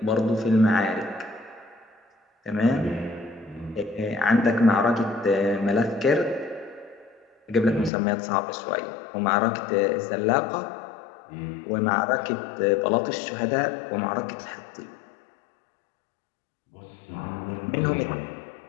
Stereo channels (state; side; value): drops out; right; at 7.9 s